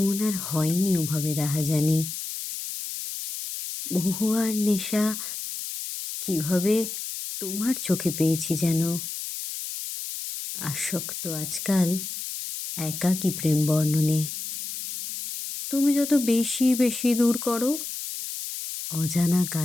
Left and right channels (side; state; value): left; noise; hiss, 7 dB below the sound